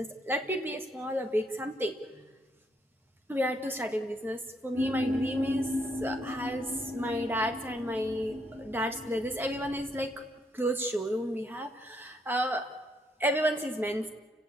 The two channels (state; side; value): normal; both; correlation 0.74